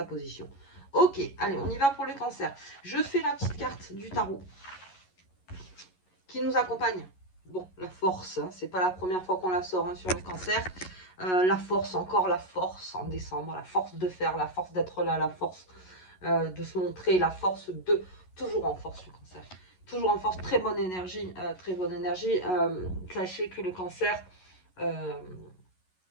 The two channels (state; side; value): late; right; 11 ms